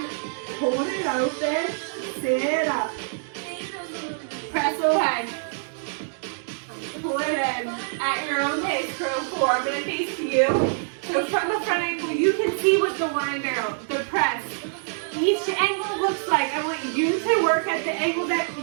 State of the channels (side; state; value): left; silent; digital silence